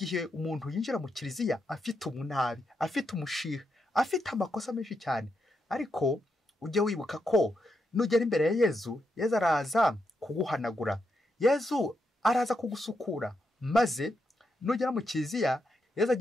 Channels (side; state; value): both; normal; correlation 0.82